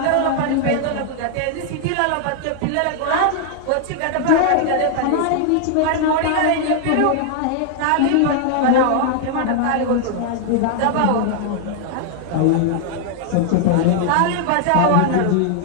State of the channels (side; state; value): both; different; correlation 0.00